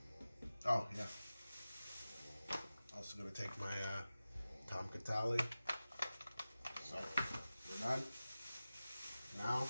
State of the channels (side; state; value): both; inverted; correlation -0.96